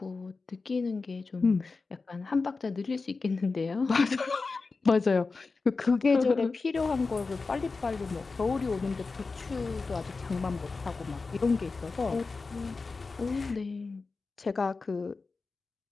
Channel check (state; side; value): quieter; right; 4.1 dB